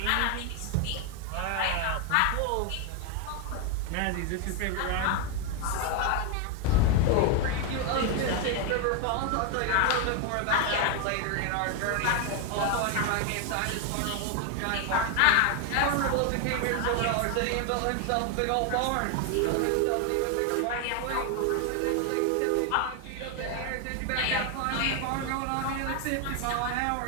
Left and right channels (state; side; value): different; both; correlation 0.01